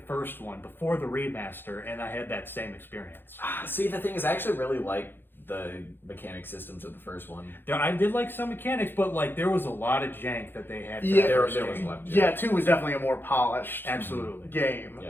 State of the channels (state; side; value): late; right; 0.10 ms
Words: one before the remaster, and I had that same experience. See, the thing is, I actually really like the mechanic systems of the first one. I did like some mechanics, but like there was a lot of jank that they had. Yeah, there was a lot of jank. Yeah, 2 was definitely a more polished game.